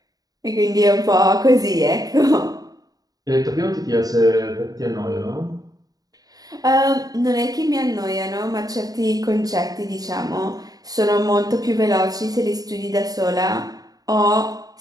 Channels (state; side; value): late; left; 0.18 ms